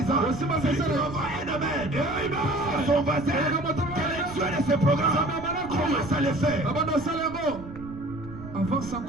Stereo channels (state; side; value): noise; right; rumble, 14 dB below the sound